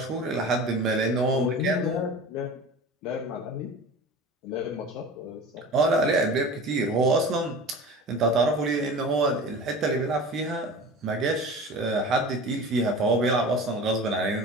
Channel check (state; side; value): normal; both; correlation 0.35